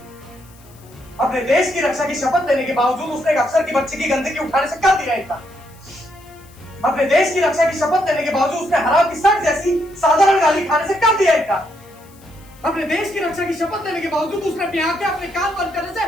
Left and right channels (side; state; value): left; noise; hiss, 27 dB below the sound